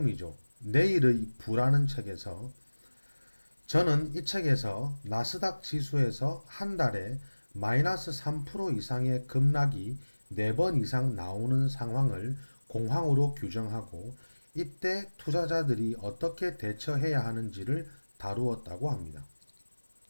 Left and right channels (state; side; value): inverted; both; correlation -1.00